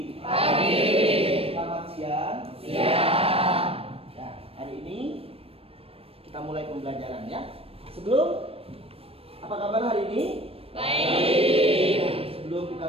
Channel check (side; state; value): left; late; 0.28 ms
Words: Pagi. Selamat siang. Siang. Nah, hari ini kita mulai pembelajaran ya. Apa kabar hari ini? Baik. Sebelum